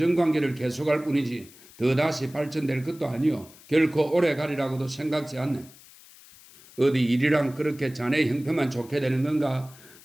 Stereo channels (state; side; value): noise; left; hiss, 22 dB below the sound